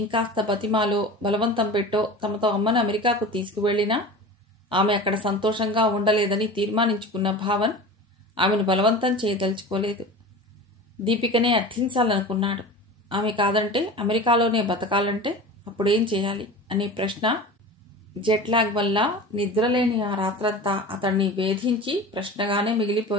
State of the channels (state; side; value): normal; both; correlation 0.34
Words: బతిమాలో బలవంతం పెట్టో తమతో అమ్మను అమెరికాకు తీసుకువెళ్లినా ఆమె అక్కడ సంతోషంగా ఉండలేదని తీర్మానించుకున్న భావన్ ఆమెను బలవంతం చేయదలుచుకోలేదు. దీపికనే అర్థించాలనుకున్నాడు. ఆమె కాదంటే అమెరికాలోనే బతకాలంటే అప్పుడేం చేయాలి అనే ప్రశ్న జెట్లాగ్ వల్ల నిద్రలేని ఆ రాత్రంతా అతన్ని వేధించి ప్రశ్నగానే